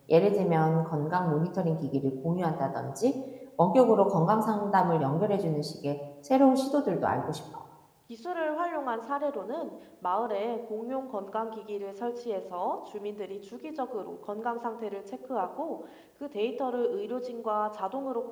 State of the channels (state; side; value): identical; both; correlation 1.00